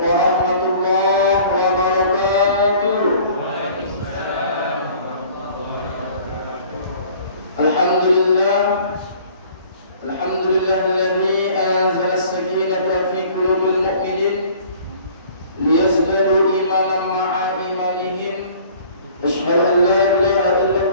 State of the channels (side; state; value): both; inverted; correlation -0.51